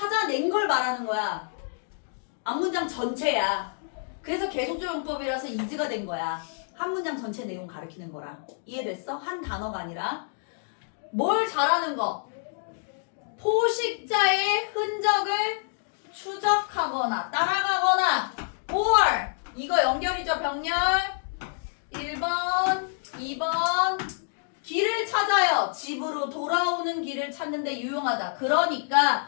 걸 말하는 거야. 앞문장 전체야. 그래서 계속적 용법이라서 is가 된 거야. 한 문장 전체 내용 가리키는 거라. 이해됐어? 한 단어가 아니라. 뭘 잘하는 거? 포식자의 흔적을 추적하거나 따라가거나 or 이거 연결이죠. 병렬 1번 2번 길을 찾아요. 집으로 돌아오는 길을 찾는데 유용하다.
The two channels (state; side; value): silent; right; digital silence